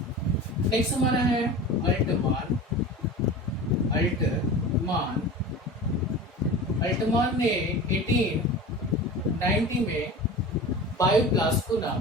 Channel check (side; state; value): both; normal; correlation 0.33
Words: नेक्स्ट हमारा है अल्टमान ने 1890 में बायोप्लास्ट को